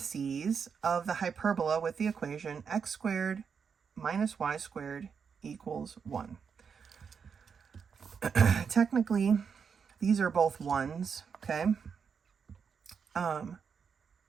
of the hyperbola with the equation x squared minus y squared equals 1. Technically, these are both 1s, okay?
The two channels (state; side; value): quieter; left; 6.4 dB